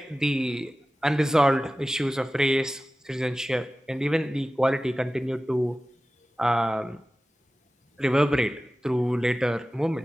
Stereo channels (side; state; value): both; normal; correlation 0.96